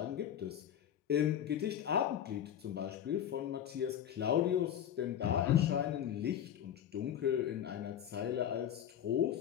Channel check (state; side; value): quieter; right; 10.0 dB